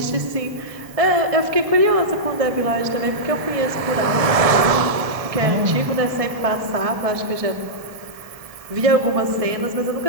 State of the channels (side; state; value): left; late; 1.6 ms